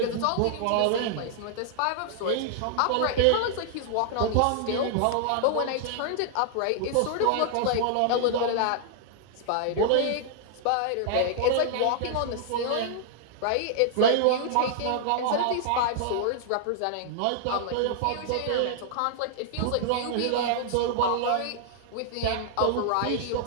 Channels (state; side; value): different; both; correlation -0.01